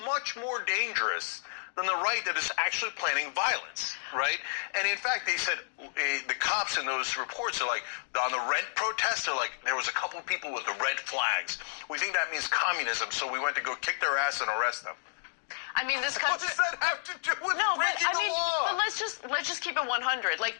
much more dangerous than the right that is actually planning violence, right? And in fact, they said, the cops in those reports are like, on the rent protest, they're like, there was a couple of people with the red flags. We think that means communism, so we went to go kick their ass and arrest them. I mean, this country. What does that have to do with breaking the law? But let's just keep it 100. Like,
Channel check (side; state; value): right; silent; digital silence